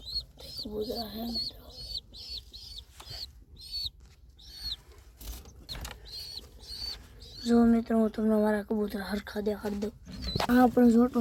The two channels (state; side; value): identical; both; correlation 1.00